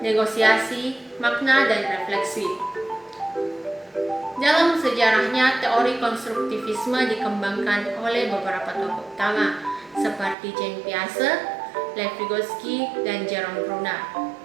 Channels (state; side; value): drops out; left; at 10.4 s